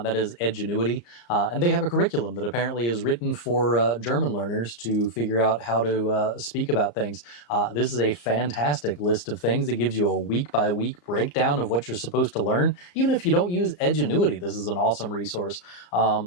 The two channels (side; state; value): right; late; 34 ms